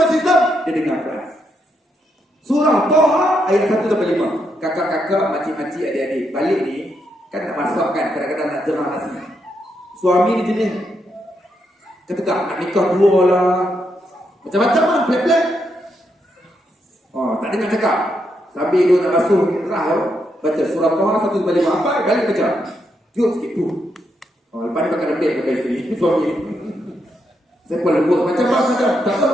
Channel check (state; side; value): normal; both; correlation 0.80